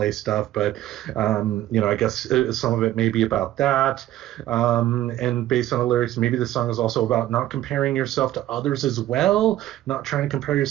stuff. But, I guess some of it may be about that. And based on the lyrics, maybe the song is also about not comparing yourself to others as well, not trying to compare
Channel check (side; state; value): left; quieter; 13.9 dB